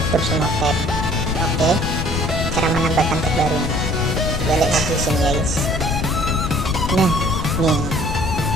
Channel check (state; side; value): noise; left; rumble, 2 dB below the sound